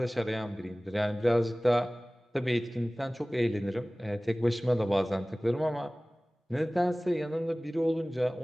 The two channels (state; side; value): normal; both; correlation 0.98